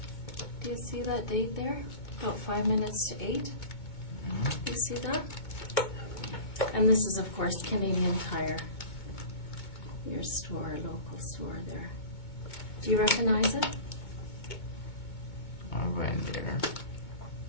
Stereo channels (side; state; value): right; late; 2.2 ms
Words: Do you see that date there? About 5 minutes to 8. You see that? And this is, of course, Canadian Tire. Your store, local store there. Do you recognize it? I went there.